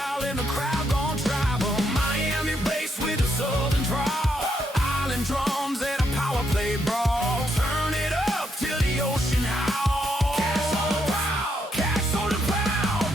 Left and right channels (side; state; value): both; normal; correlation 0.77